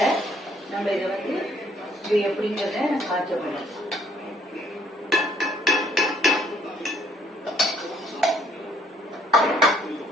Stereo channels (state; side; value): normal; both; correlation 0.65